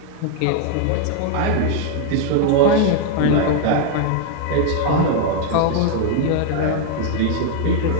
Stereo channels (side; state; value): both; different; correlation 0.00